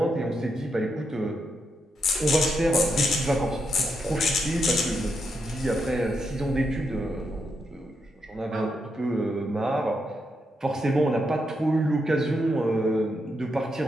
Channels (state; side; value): normal; both; correlation 0.82